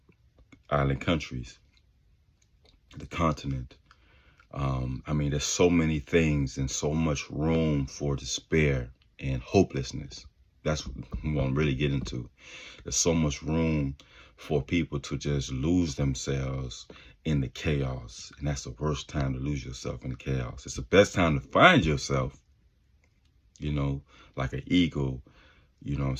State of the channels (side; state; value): both; identical; correlation 1.00